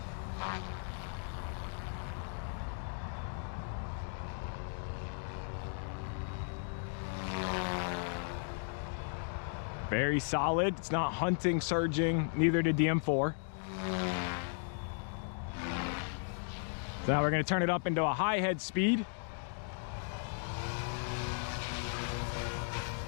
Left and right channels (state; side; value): silent; right; 54 dB below the other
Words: Very solid. It's not hunting, surging. Neither did the M4. So now we're going to turn it up into a high head speed.